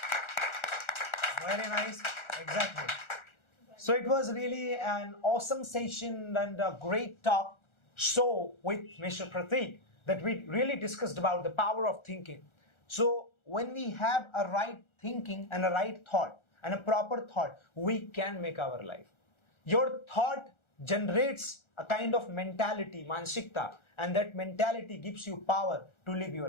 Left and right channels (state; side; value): late; right; 1.4 ms